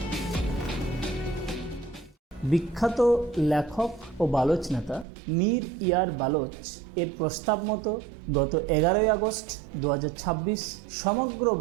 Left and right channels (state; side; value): drops out; left; at 5.1 s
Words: বিখ্যাত লেখক ও বালোচ নেতা মীর ইয়ার বালোচ এর প্রস্তাব মতো গত 11ই আগস্ট 2026 সমগ্র